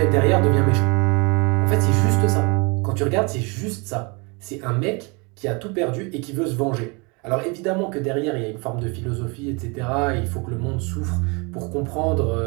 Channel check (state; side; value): quieter; left; 29.8 dB